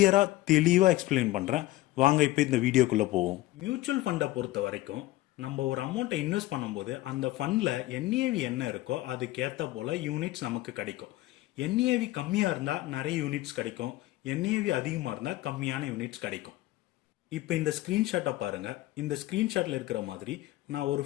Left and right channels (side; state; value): right; quieter; 17.3 dB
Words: தெளிவாக எக்ஸ்பிளைன் பண்ணுறேன். வாங்க இப்போ இந்த வீடியோக்குள்ளே போவோம். மியூச்சுவல் ஃபண்டை பொறுத்த வரைக்கும் நம்ம ஒரு அமௌண்ட்டை இன்வெஸ்ட் பண்ணும்போது அந்த ஃபண்டில் என்ஏவி என்ன இருக்கோ அதுக்கேற்ற போல் யூனிட்ஸ் நமக்கு கிடைக்கும். என்ஏவி கம்மியாக இருந்தால் நிறைய யூனிட்ஸ் கிடைக்கும், என்ஏவி அதிகமாக இருந்தால் கம்மியான யூனிட்ஸ் கிடைக்கும். இப்போ இந்த ஸ்க்ரீன்ஷாட்டை பாருங்கள். இந்த ஸ்க்ரீன்ஷாட்டில் இருக்கிற மாதிரி நான் ஒரு